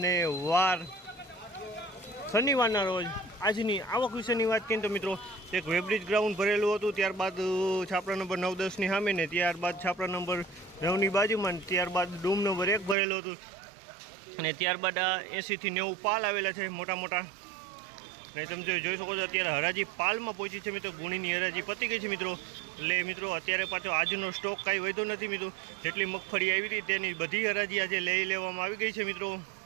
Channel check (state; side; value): drops out; left; at 13.0 s